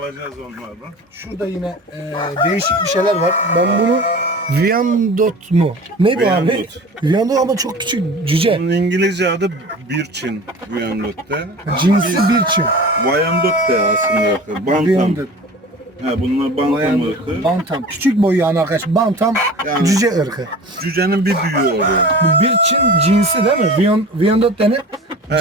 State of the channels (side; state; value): both; normal; correlation 0.38